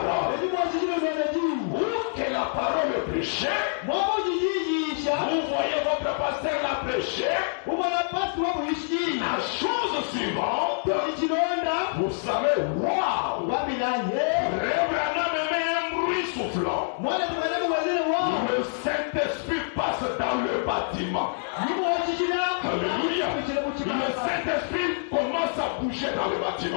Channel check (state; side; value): silent; right; digital silence